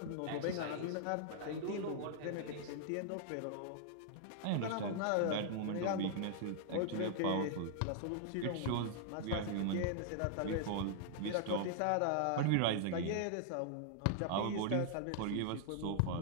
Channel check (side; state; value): both; different; correlation -0.01